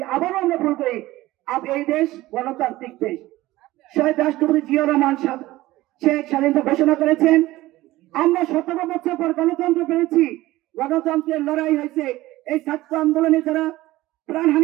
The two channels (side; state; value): left; quieter; 17.5 dB